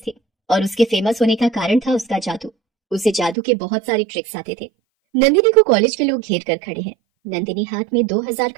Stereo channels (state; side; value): drops out; left; at 3.4 s